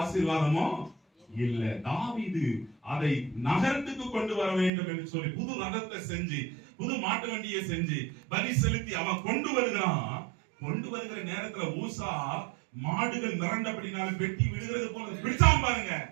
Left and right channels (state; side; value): drops out; left; at 4.7 s